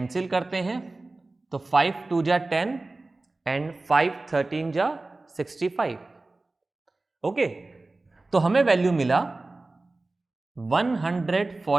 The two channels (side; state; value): left; quieter; 3.2 dB